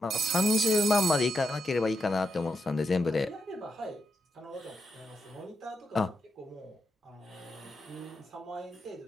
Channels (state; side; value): normal; both; correlation 0.82